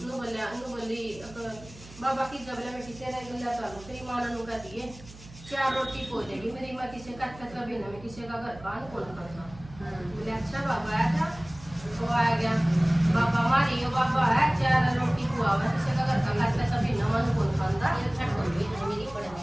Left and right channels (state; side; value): noise; right; hum, 19 dB below the sound